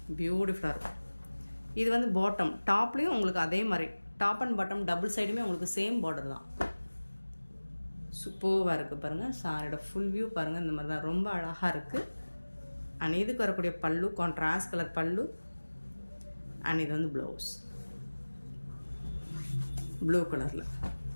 பியூட்டிஃபுல்லாக இருக்கும். இது வந்து பாட்டம், டாப்லேயும் உங்களுக்கு அதே மாதிரி டாப் அண்ட் பாட்டம் டபுள் சைடுமே உங்களுக்கு சேம் பார்டர் தான். சூப்பராக இருக்குது பாருங்கள். சாரியோட ஃபுல் வியூ பாருங்கள். இந்த மாதிரி தான் ரொம்ப அழகாக இருக்குது. அண்ட் இதுக்கு வரக்கூடிய பல்லு கான்ட்ராஸ்ட் கலர் பல்லு. அண்ட் இது வந்து ப்ளவுஸ் ப்ளூ கலரில்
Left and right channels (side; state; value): both; inverted; correlation -1.00